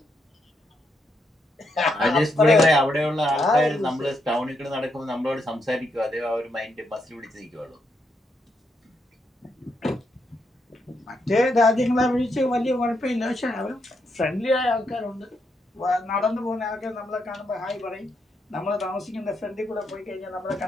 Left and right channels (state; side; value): normal; both; correlation 0.80